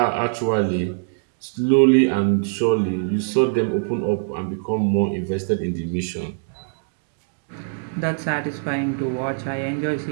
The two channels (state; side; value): silent; left; digital silence